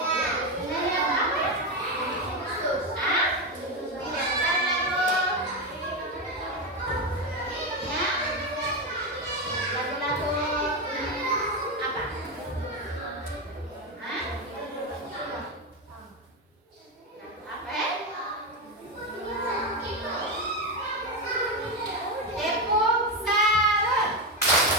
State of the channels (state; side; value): normal; both; correlation 0.12